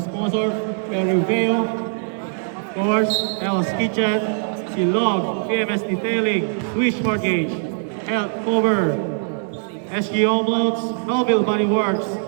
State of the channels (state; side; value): silent; left; digital silence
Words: Perry Vale, of course, El's Kitchen, Silog, PMS Detailing, Swish Mortgage, Health Cover, SG Home Loans, Melville Body Works,